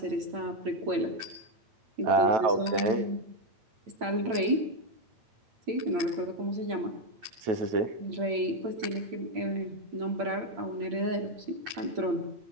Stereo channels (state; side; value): late; left; 8.8 ms